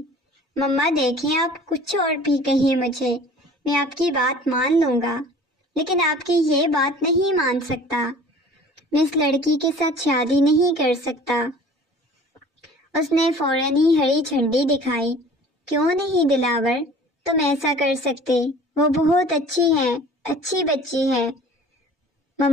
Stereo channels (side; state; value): both; normal; correlation 0.46